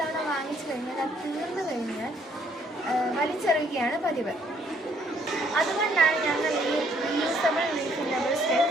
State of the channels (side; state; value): both; normal; correlation 0.66